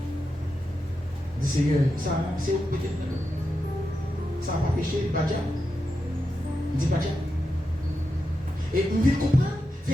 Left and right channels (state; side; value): normal; both; correlation 0.88